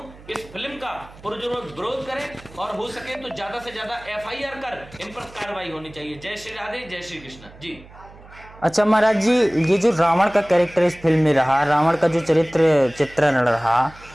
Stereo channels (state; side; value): noise; right; hum, 21 dB below the sound